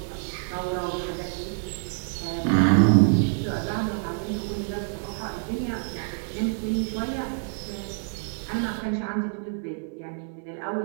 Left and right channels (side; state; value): left; silent; 60 dB below the other